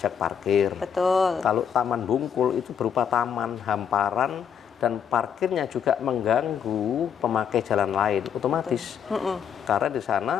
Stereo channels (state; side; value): quieter; right; 7.8 dB